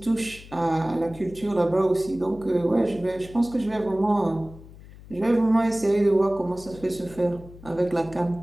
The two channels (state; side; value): noise; left; hum, 19 dB below the sound